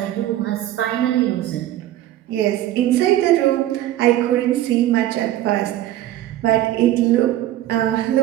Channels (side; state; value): left; quieter; 13.6 dB